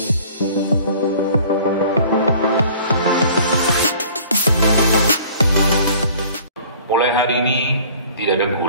Mulai hari ini tidak ada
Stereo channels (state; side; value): inverted; both; correlation -0.50